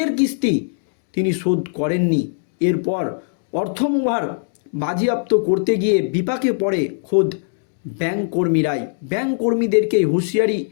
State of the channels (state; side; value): silent; right; digital silence